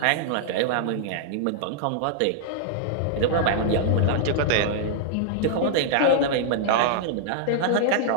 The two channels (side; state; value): both; different; correlation -0.01